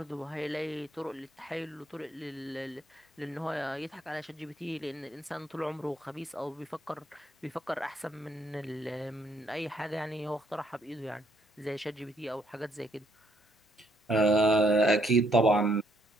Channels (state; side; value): normal; both; correlation 0.71